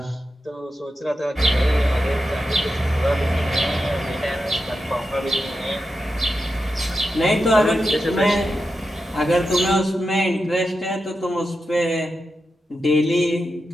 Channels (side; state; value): both; normal; correlation 0.89